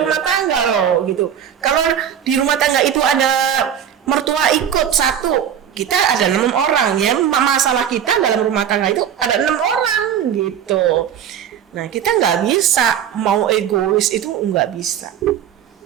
rumah tangga loh, gitu. Kalau di rumah tangga itu ada mertua ikut 1, kita ada 6 orang ya, masalah kita dalam rumah tangga itu ada 6 orang gitu. Nah kita nggak bisa mau egois, itu nggak bisa.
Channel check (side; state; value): left; quieter; 9.2 dB